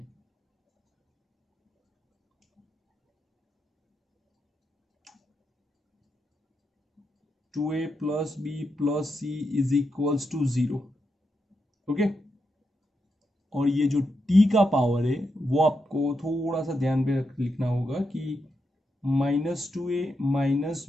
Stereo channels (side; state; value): both; normal; correlation 0.84